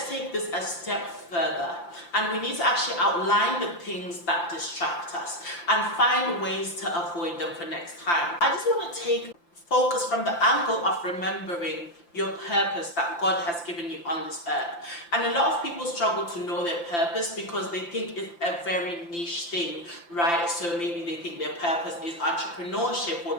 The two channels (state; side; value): late; right; 5.8 ms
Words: take this a step further, and we need to actually outline the things that distract us and find ways to avoid them for next time. I just want to take focus from the angle of remembering your purpose that God has given you on this earth. And a lot of people struggle to know their purpose because they think it's a very niche thing, right? So maybe they think their purpose is entrepreneurship or